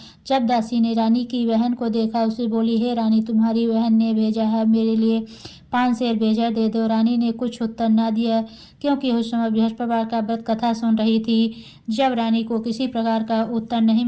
जब दासी ने रानी की बहन को देखा, उसे बोली, हे रानी, तुम्हारी बहन ने भेजा है, मेरे लिए 5 सेर बेजर दे दो। रानी ने कुछ उत्तर न दिया, क्योंकि उस समय बृहस्पतिवार का व्रत कथा सुन रही थी। जब रानी को किसी प्रकार का उत्तर नहीं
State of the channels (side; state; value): both; identical; correlation 1.00